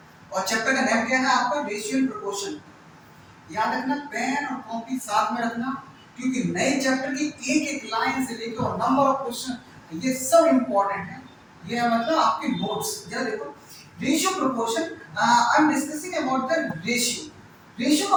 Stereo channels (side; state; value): both; identical; correlation 1.00